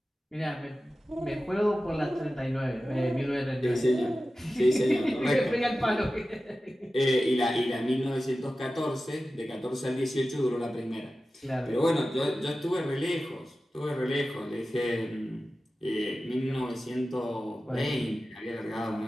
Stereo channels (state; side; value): normal; both; correlation 0.94